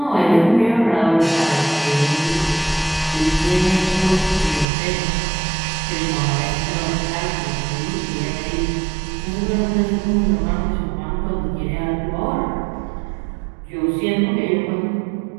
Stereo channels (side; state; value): left; drops out; at 4.7 s